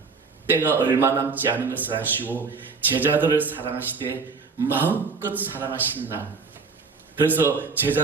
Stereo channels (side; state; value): left; quieter; 4.7 dB